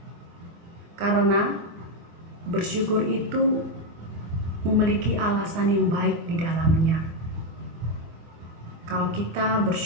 Karena bersyukur itu memiliki alasan yang baik di dalamnya. Kalau kita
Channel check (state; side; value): late; left; 24 ms